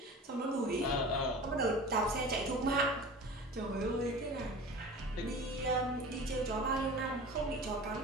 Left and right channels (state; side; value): normal; both; correlation 0.37